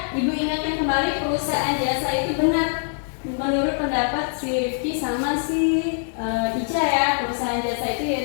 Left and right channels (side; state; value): right; silent; digital silence